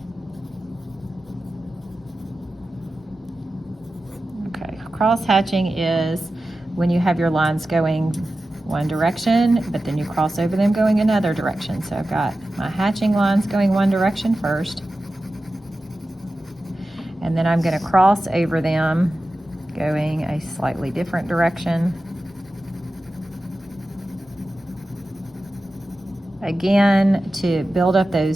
Okay, cross hatching is when you have your lines going one direction, but then you cross over them going another direction. So I've got my hatching lines going one direction first, and then I'm going to cross over them going a slightly different direction. Again, to build up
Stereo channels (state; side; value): normal; both; correlation 0.94